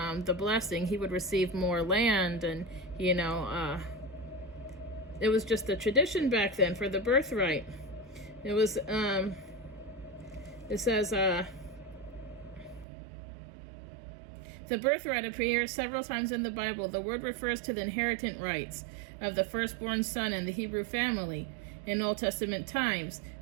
blessing. He would receive more land, and it was just a tradition back then for the birthright. It was it says the birthright appears several times in the Bible. The word refers to the inheritance rights of the firstborn son in the Hebrew family. In Old Testament times,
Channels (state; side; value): drops out; left; at 12.9 s